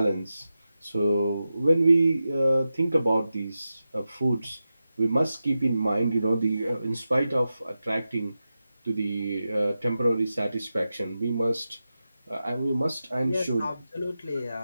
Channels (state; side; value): inverted; both; correlation -0.92